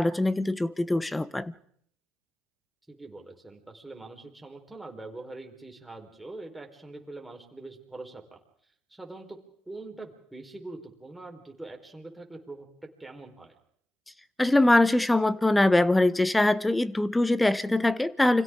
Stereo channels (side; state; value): both; normal; correlation 0.98